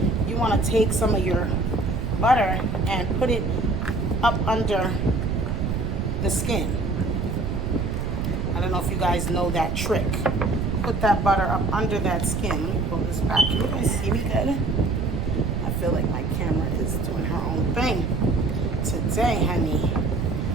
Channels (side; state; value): right; noise; rumble, 1 dB below the sound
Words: You want to take some of your butter and put it up under the skin. I don't know if you guys know that trick. Put that butter up under that skin. Let me pull this back. Can you guys see me good? I feel like my camera is doing her own thing today, honey.